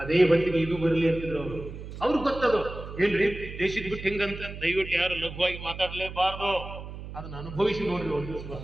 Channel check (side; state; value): right; noise; hum, 11 dB below the sound